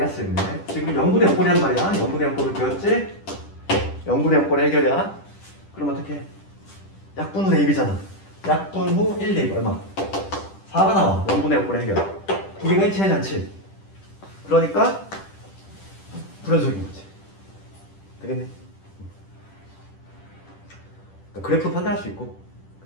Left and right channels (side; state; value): right; late; 10 ms